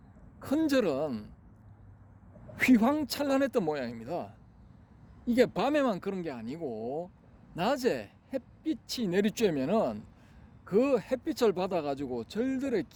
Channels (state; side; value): identical; both; correlation 1.00